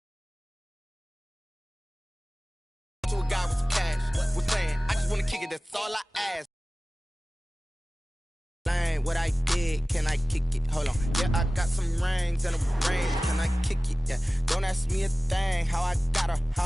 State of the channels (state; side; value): normal; both; correlation 0.97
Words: To a guy with some cash, was playing, I just wanna kick it, that's all I ask. What I did, can I kick it? Hold on, yeah, I got some rings and a ring, can I kick it? Yeah, don't ask me a thing, how I got her, how